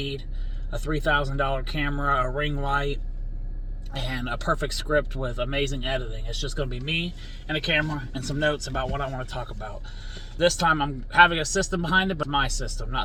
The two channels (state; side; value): identical; both; correlation 1.00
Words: a $3,000 camera, a ring light, and a perfect script with amazing editing. It's just going to be me and a camera and some notes about what I want to talk about. This time I'm having a system behind it, but my system,